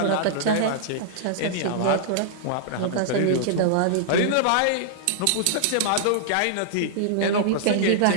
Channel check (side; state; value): both; different; correlation -0.01